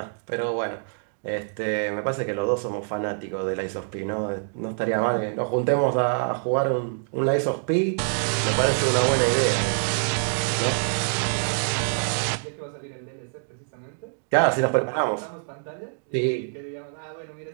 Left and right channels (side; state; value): left; silent; digital silence